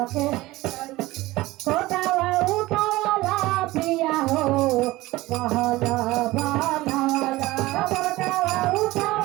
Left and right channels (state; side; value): quieter; left; 18.8 dB